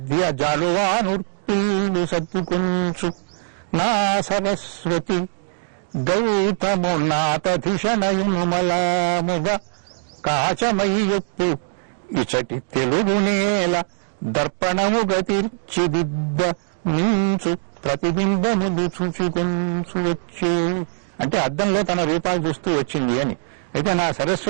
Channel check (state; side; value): silent; left; digital silence